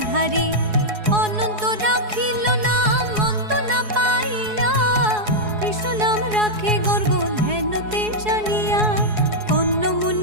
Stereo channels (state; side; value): late; left; 4.7 ms